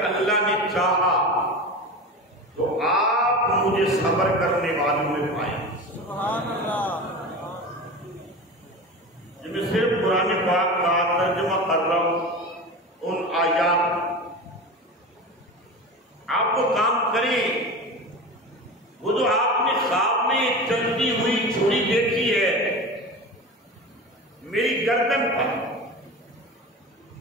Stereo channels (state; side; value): normal; both; correlation 0.30